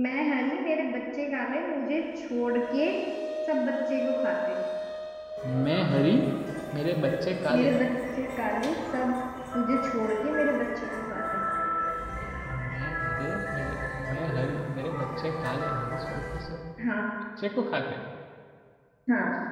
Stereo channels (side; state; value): both; identical; correlation 1.00